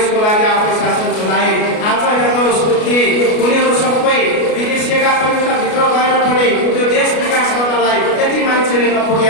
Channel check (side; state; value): right; late; 33 ms